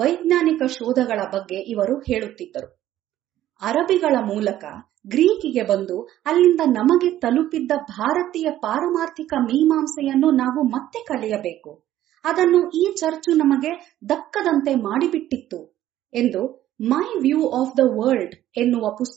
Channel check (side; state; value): left; quieter; 13.1 dB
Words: ಶೋಧಗಳ ಬಗ್ಗೆ ಇವರು ಹೇಳುತ್ತಿದ್ದರು. ಅರಬಿಗಳ ಮೂಲಕ ಗ್ರೀಕಿಗೆ ಬಂದು ಅಲ್ಲಿಂದ ನಮಗೆ ತಲುಪಿದ್ದ ಭಾರತೀಯ ಪಾರಮಾರ್ಥಿಕ ಮೀಮಾಂಸೆಯನ್ನು ನಾವು ಮತ್ತೆ ಕಲಿಯಬೇಕು. ಅದನ್ನು ಈ ಚರ್ಚು ನಮಗೆ ದಕ್ಕದಂತೆ ಮಾಡಿಬಿಟ್ಟಿತ್ತು ಎಂದು my view of the world ಎನ್ನುವ